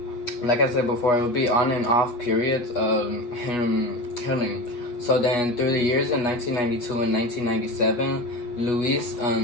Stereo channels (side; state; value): right; late; 8.3 ms